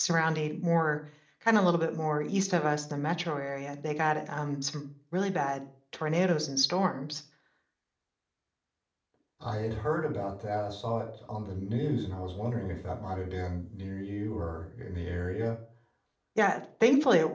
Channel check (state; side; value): identical; both; correlation 1.00